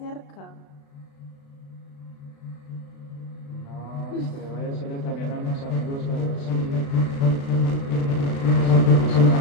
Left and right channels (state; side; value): late; right; 36 ms